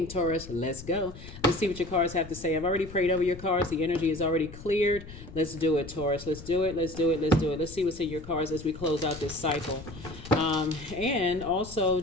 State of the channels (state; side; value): noise; left; rumble, 14 dB below the sound